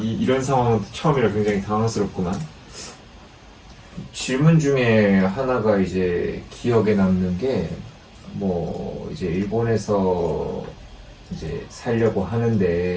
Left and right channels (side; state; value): both; identical; correlation 1.00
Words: 상황은 처음이라 굉장히 당황스럽구만. 질문 중에 하나가 이제 기억에 남는 게, 뭐 이제 일본에서 이제 살려고